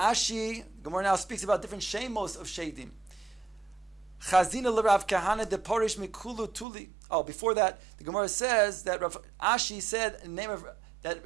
Gemara now speaks about different shemos of shadim. Chazina l'Rav Kahana de Porish Mikulu Tuli. Oh, before that, the Gemara says that Rav Ashi said in the name of that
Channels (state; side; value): drops out; left; at 6.7 s